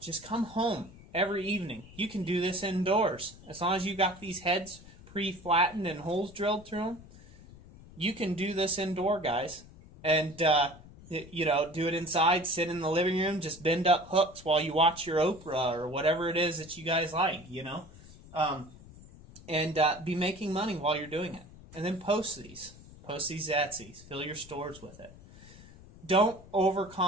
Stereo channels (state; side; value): noise; left; rumble, 20 dB below the sound